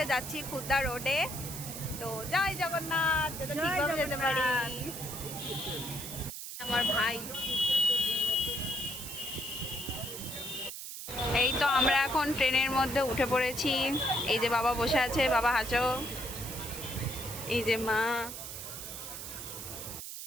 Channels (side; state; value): right; noise; hiss, 8 dB below the sound